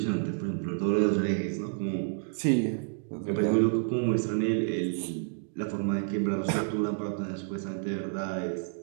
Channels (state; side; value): silent; left; digital silence